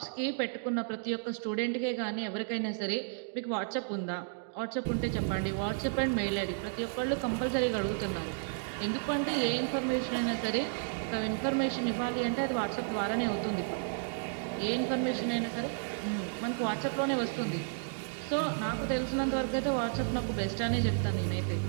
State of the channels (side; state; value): left; silent; digital silence